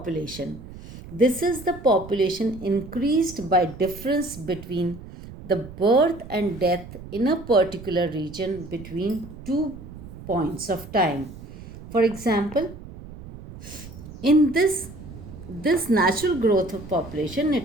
This is the population increased by difference between the birth and death in a particular region between 2 points of time. For example, in this natural growth of population,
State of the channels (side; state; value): right; noise; rumble, 15 dB below the sound